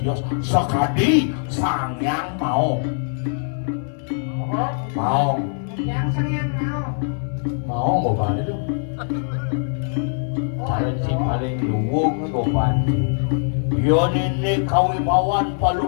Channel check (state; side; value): silent; right; 62 dB below the other